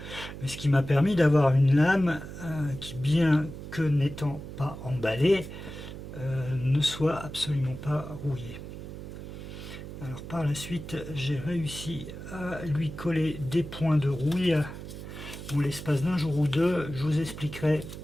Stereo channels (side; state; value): right; noise; hum, 11 dB below the sound